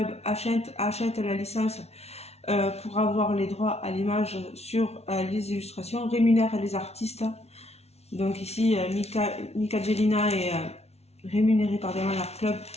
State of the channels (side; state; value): right; late; 0.31 ms